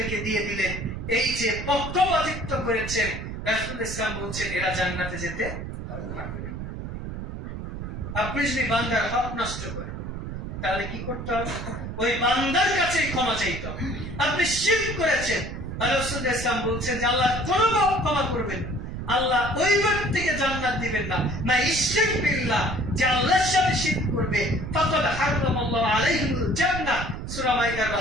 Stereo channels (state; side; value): noise; right; rumble, 7 dB below the sound